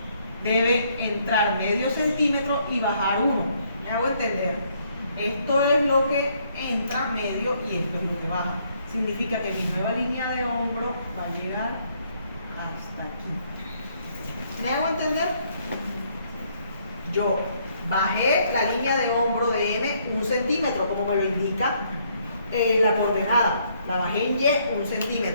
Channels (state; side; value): inverted; both; correlation -0.69